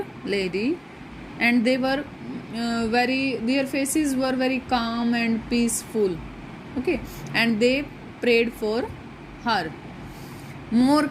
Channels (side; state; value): both; identical; correlation 1.00